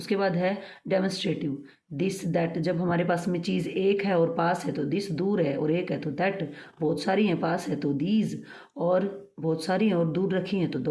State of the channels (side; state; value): both; identical; correlation 1.00